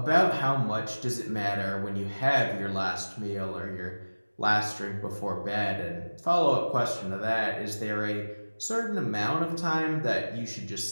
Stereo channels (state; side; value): inverted; both; correlation -1.00